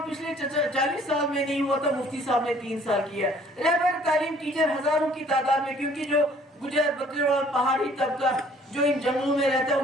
पिछले 40 साल में नहीं हुआ था, मुफ्ती साहब ने 3 साल किया। रहबर तालीम टीचर हजारों की तादाद में, क्योंकि जो गुजर बकरवाल पहाड़ी तबका जो इन जंगलों में रहता है,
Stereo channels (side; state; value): both; normal; correlation 0.57